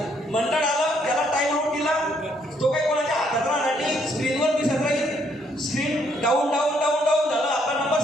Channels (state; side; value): normal; both; correlation 0.70